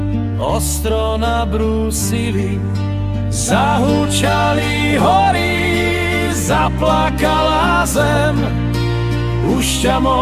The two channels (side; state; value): both; identical; correlation 1.00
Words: ostro nabrúsili. Zahučali hory, zaplakala zem. Už ťa